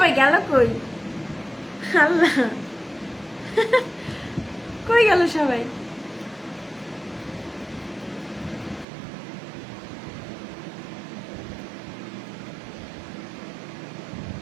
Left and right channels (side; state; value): left; drops out; at 8.8 s